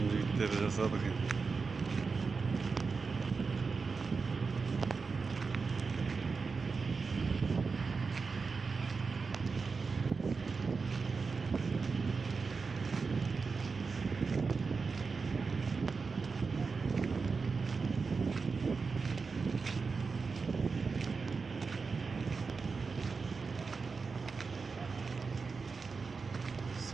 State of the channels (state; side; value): quieter; left; 4.7 dB